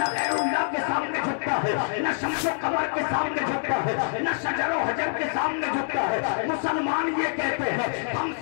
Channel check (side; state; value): right; silent; digital silence